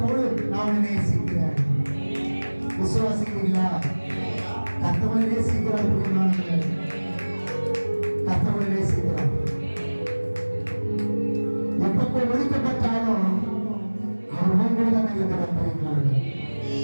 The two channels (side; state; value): both; inverted; correlation -1.00